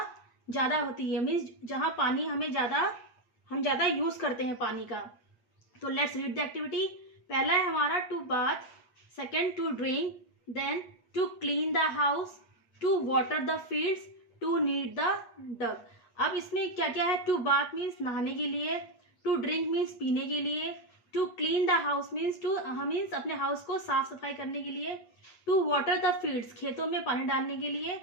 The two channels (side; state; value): right; late; 8.5 ms